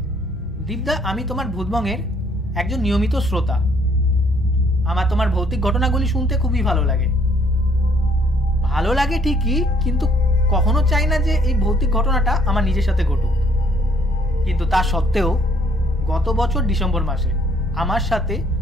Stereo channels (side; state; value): both; normal; correlation 0.64